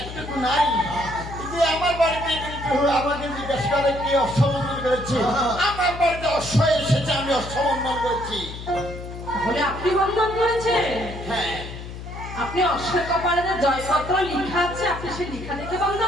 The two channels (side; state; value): left; noise; hum, 10 dB below the sound